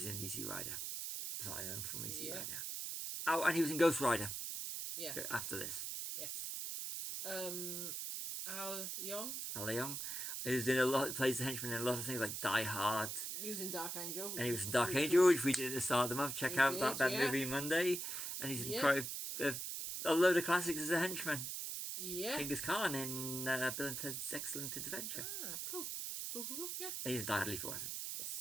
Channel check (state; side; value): noise; right; hiss, 4 dB below the sound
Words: in Easy Rider. So I know from Easy Rider. Oh, and he was in Ghost Rider. Yeah. After this. Yes. Al Leong. He was in plays the henchman in a lot of things like Die Hard. He was in Dark Angel. And he was in Dark Angel, which we did at the start of the month. Check out that movie Monday. And he's in quite a load of classics as a henchman. Yeah. Genghis Khan in Bill and Ted's Excellent Adventure. Ah, cool. Yeah. And he's in Die Hard Lethal Weapon.